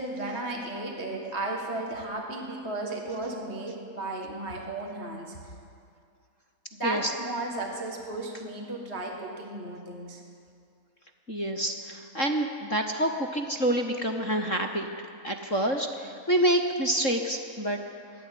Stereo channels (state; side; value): late; right; 3.7 ms